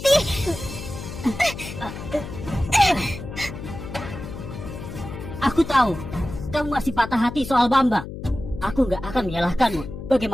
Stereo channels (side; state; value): left; noise; hum, 10 dB below the sound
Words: Aku tahu kamu masih patah hati soal Bambang. Aku nggak akan menyalahkanmu.